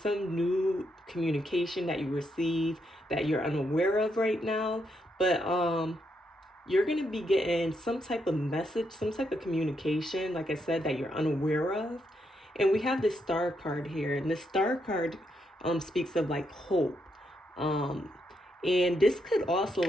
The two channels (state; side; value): normal; both; correlation 0.79